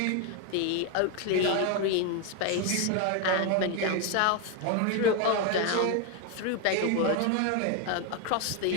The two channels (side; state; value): both; different; correlation 0.01